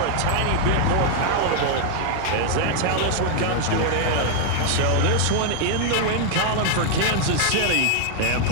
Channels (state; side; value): different; both; correlation 0.00